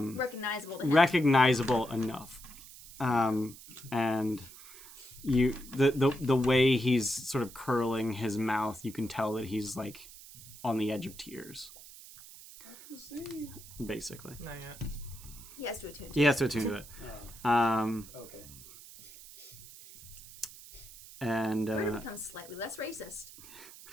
to him. recognizable enough, and the way he's sort of curling his mouth, you can tell that he's like on the edge of tears, basically. Not yet. He has to attune to He has to attune to it. Okay. And We're gonna become slightly less racist.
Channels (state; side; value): noise; right; hiss, 17 dB below the sound